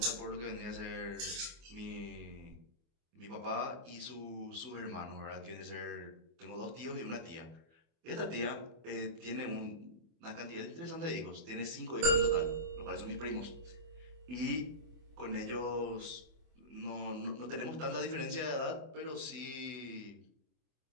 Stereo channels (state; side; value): late; left; 24 ms